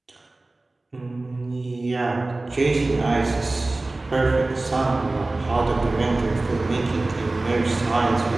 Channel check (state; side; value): quieter; left; 3.0 dB